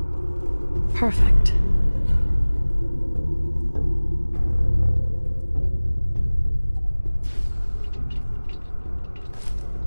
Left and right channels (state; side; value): inverted; both; correlation -1.00